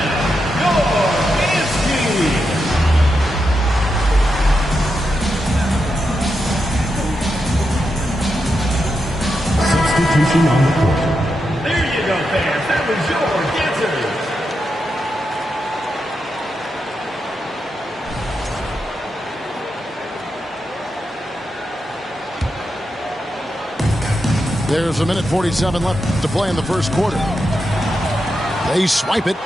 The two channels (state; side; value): normal; both; correlation 0.86